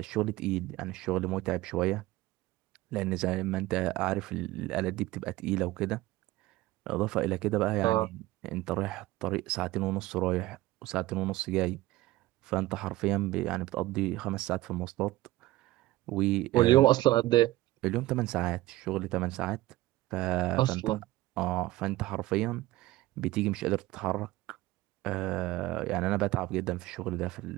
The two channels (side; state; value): left; quieter; 17.7 dB